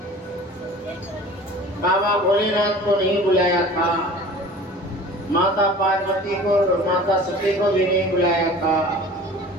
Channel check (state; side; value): normal; both; correlation 0.43